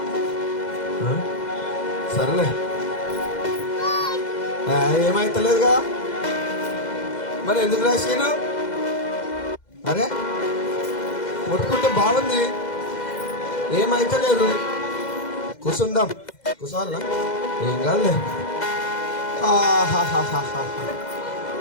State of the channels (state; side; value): late; right; 2.0 ms